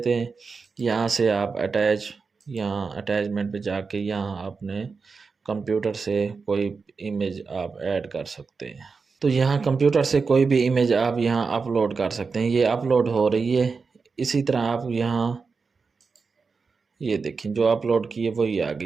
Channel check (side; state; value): left; quieter; 4.8 dB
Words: हैं। यहाँ से आप अटैच, यहाँ अटैचमेंट पे जाके यहाँ आपने कंप्यूटर से कोई इमेज आप ऐड कर सकते हैं। तो यहाँ कंप्यूटर से कोई भी इमेज आप यहाँ अपलोड कर सकते हैं। ये अपलोड हो रही है। इसी तरह आप यहाँ ये देखें, जो अपलोड की है वही आ